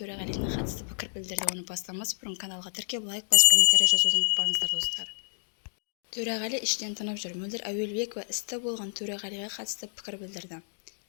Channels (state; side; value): silent; right; digital silence